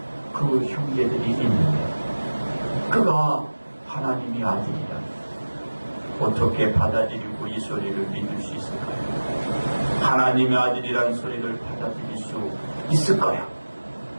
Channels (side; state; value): both; inverted; correlation -1.00